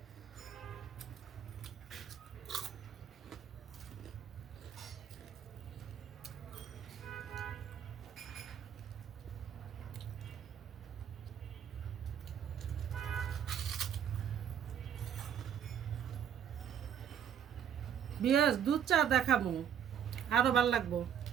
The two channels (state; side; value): quieter; left; 8.8 dB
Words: বিয়াস দুধ চা দেখাবো, আরো ভাল লাগবো।